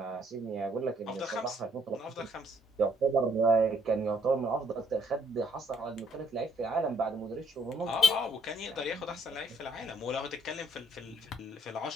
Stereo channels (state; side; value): normal; both; correlation 0.67